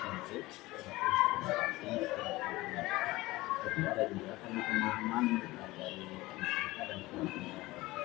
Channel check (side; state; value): right; quieter; 19.7 dB